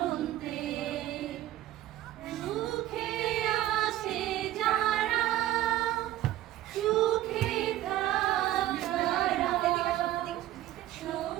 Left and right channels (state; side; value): quieter; left; 14.2 dB